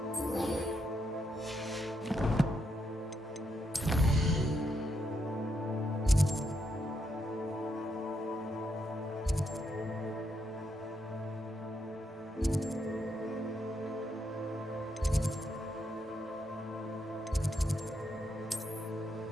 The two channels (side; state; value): both; normal; correlation 0.79